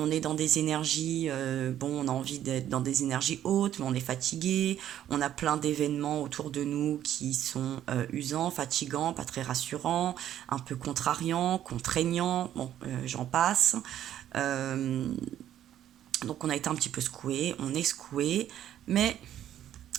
est dans des énergies, bon, on a envie d'être dans des énergies hautes, mais on est fatigué. On a plein d'événements autour de nous qui sont usants, fatigants, pas très rassurants, un peu contrariants, contraignants. Bon, j'en passe. Euh, donc on a été un petit peu secoué, on est secoué, mais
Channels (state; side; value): quieter; left; 11.3 dB